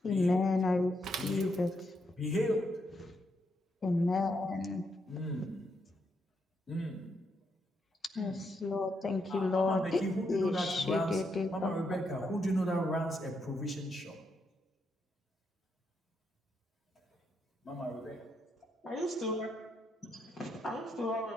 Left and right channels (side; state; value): both; normal; correlation 0.79